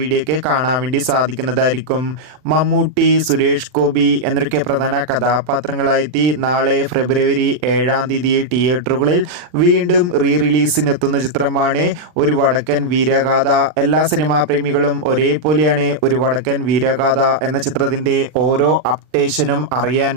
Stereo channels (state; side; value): late; left; 39 ms